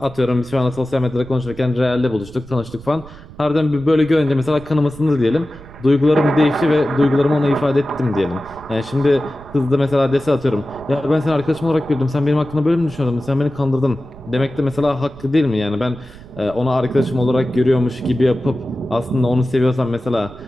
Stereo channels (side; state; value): right; noise; rumble, 19 dB below the sound